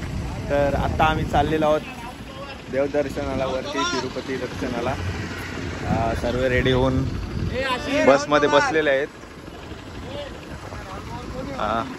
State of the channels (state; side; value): identical; both; correlation 1.00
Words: तर आता आम्ही चाललेलो आहोत देवदर्शनाला, वरती तिरुपती दर्शनाला. सर्व रेडी होऊन बसमध्ये बसलेले आहेत.